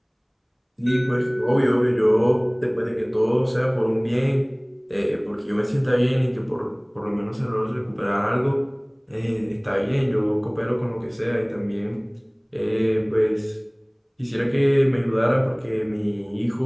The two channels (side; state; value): both; identical; correlation 1.00